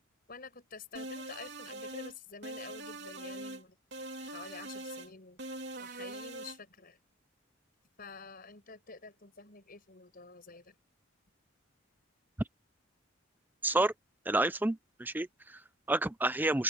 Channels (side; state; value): both; normal; correlation 0.56